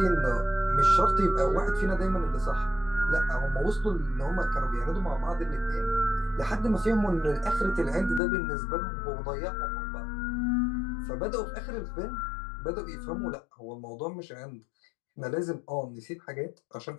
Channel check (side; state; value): right; drops out; at 8.2 s